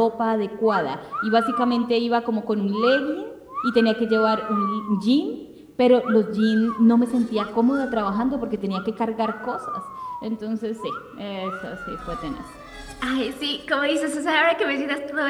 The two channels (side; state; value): both; identical; correlation 1.00